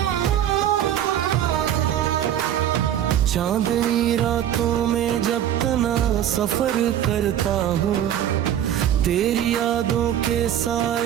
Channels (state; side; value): quieter; left; 10.8 dB